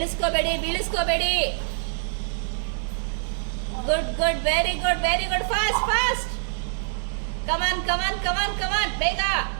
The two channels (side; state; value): left; silent; 62 dB below the other